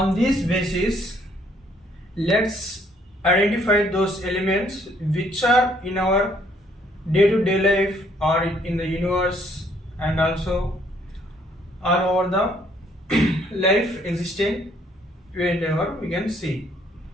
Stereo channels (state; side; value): normal; both; correlation 0.65